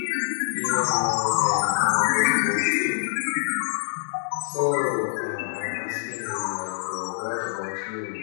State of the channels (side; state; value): right; silent; digital silence